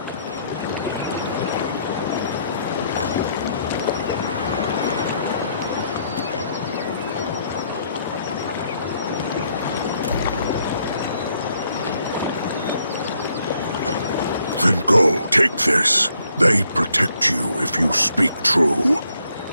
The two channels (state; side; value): inverted; both; correlation -0.71